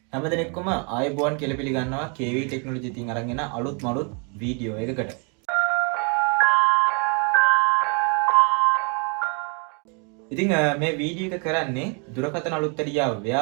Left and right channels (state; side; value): quieter; left; 35.4 dB